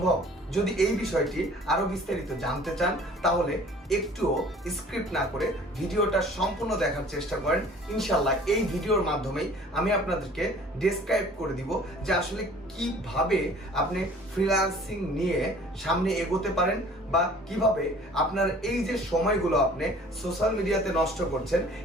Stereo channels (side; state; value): both; normal; correlation 0.50